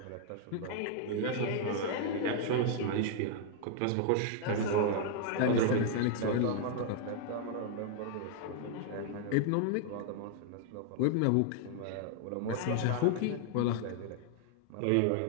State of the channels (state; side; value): different; both; correlation 0.00